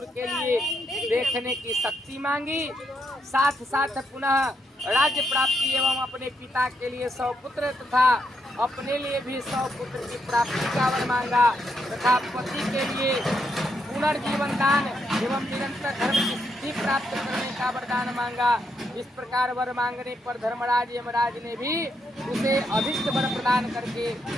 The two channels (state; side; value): normal; both; correlation 0.79